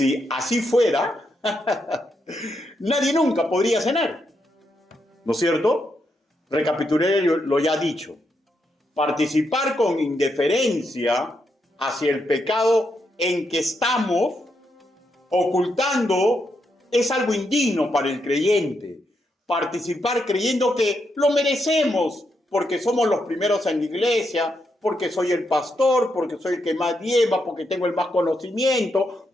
así fuera, nadie nunca podría cenar, ¿no es cierto? Recapitulé lo ya dicho. Participar con indiferencia hacia el pecado en que estamos ocultando es algo indigno para el creyente. Participar creyendo que lo merecemos porque somos los primeros en la iglesia, porque soy el pastor, porque soy el que más lleva, porque tengo el más conocimiento,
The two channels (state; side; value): normal; both; correlation 0.81